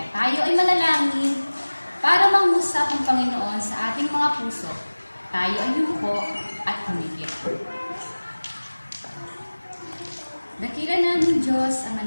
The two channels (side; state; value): both; inverted; correlation -1.00